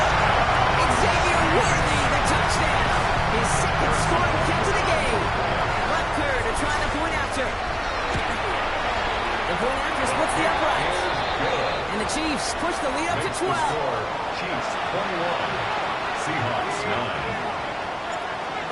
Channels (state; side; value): identical; both; correlation 1.00